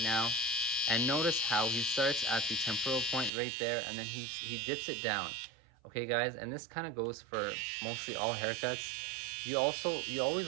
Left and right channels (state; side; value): drops out; left; at 3.3 s